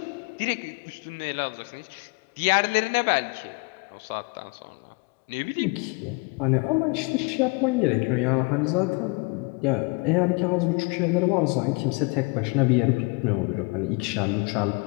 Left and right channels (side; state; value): right; quieter; 29.3 dB